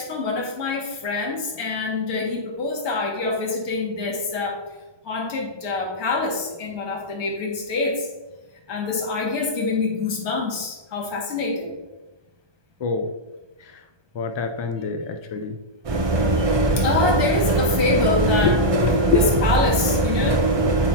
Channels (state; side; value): late; left; 1.2 ms